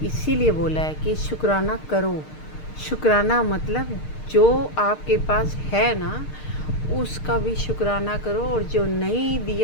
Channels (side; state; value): right; late; 6.6 ms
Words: इसीलिए बोला है कि शुक्राना करो। शुक्राना मतलब जो आपके पास है ना, उसका भी शुक्राना करो, और जो नहीं